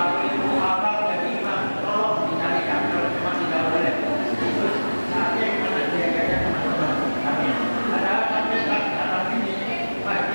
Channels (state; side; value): inverted; both; correlation -1.00